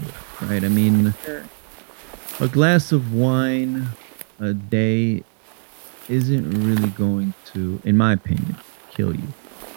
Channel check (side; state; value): left; silent; digital silence